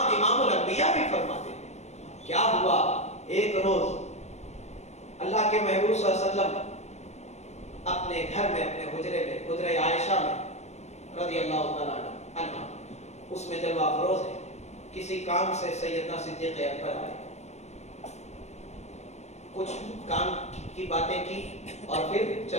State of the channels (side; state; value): right; late; 0.32 ms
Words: इमामुल अंबिया भी फरमाते हैं। क्या हुआ? एक रोज अल्लाह के महबूब सल्लल्लाहु अलैहि वसल्लम अपने घर में, अपने हुजरे में, हुजरे आयशा में रज़ी अल्लाह तआला अन्हा, उसमें जलवा फरोज है, किसी काम से सैयदना सिद्दीक़ अकबर आए, कुछ काम की बातें की और फिर